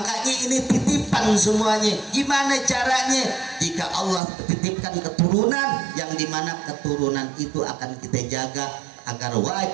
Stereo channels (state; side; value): drops out; left; at 4.2 s